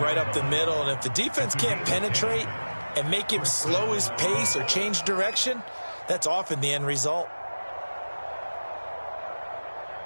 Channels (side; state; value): both; inverted; correlation -1.00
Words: right up the middle. And if the defense can't penetrate and make him slow his pace or change direction, that's often the end result.